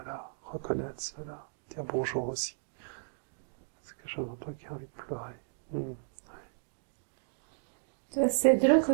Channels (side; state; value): left; silent; digital silence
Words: reconnaître cela, dire bonjour aussi. C'est quelque chose en toi qui a envie de pleurer. Hmm. c'est drôle